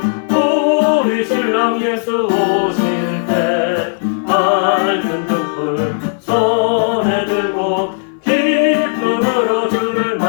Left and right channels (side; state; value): right; silent; 59 dB below the other